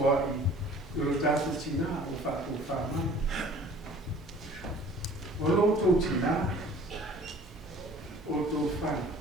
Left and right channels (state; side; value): normal; both; correlation 0.49